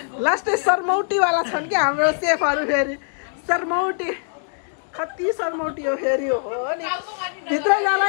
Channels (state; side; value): silent; right; 64 dB below the other